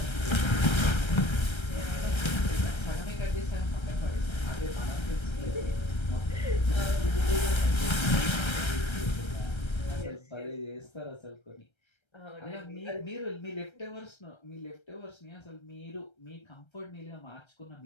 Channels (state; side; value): late; right; 1.3 ms